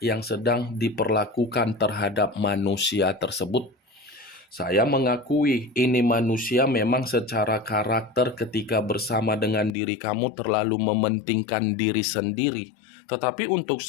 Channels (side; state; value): right; drops out; at 9.7 s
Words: yang sedang diperlakukan terhadap manusia tersebut. Saya mengakui ini manusia memang secara karakter ketika bersama dengan diri kamu terlalu mementingkan diri sendiri. Tetapi untuk